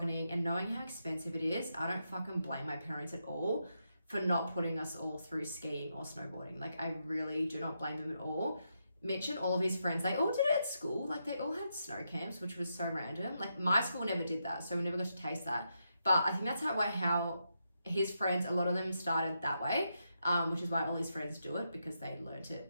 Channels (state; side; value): inverted; both; correlation -0.83